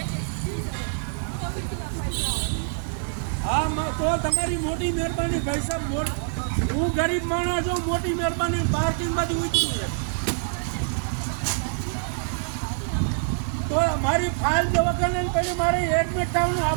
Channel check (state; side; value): silent; left; digital silence